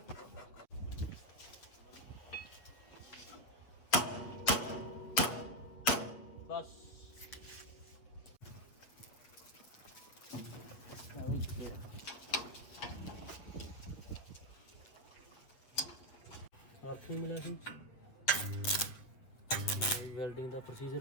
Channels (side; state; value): right; late; 7.7 ms